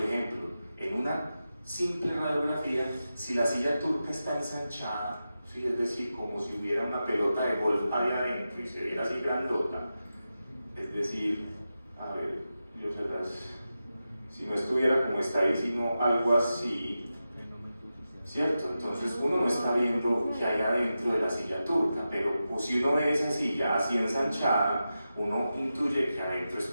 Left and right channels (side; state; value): both; inverted; correlation -0.91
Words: ejemplo, en una simple radiografía, si la silla turca está ensanchada, ¿sí? Es decir, como si hubiera una pelota de golf ahí adentro y se viera así grandota, es decir, a ver, si no estuviera como está ahí, sino algo así, ¿cierto? Entonces uno no está viendo qué hay adentro de la silla turca, pero pues, si uno ve esa silla así ensanchada, uno intuye que adentro